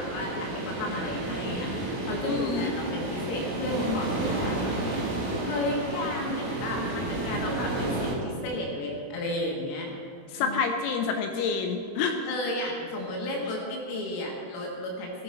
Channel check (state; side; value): late; right; 21 ms